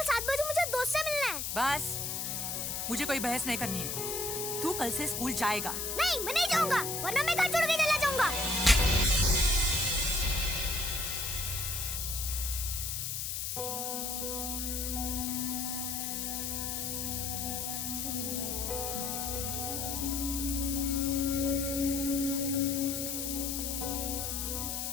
7 बजे मुझे दोस्त से मिलना है। बस, मुझे कोई बहस नहीं करनी है। तू कल से स्कूल जाएगा। नहीं, मैं नहीं जाऊंगा, वरना मैं घर छोड़ के चला जाऊंगा।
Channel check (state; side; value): noise; left; hiss, 2 dB below the sound